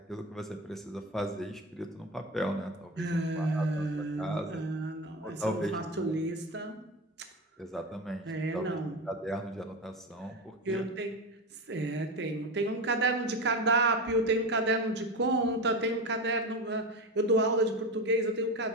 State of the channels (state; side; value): normal; both; correlation 0.22